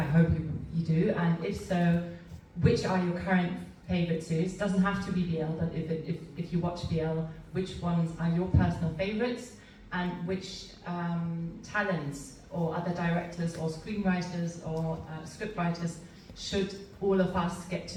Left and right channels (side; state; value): both; identical; correlation 1.00